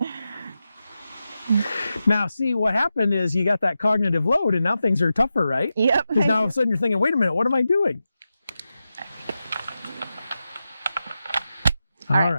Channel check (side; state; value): both; inverted; correlation -0.91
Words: Now, see, what happened is you got that cognitive load and now things are tougher, right? Yep. Because now all of a sudden you're thinking, wait a minute, what am I doing? All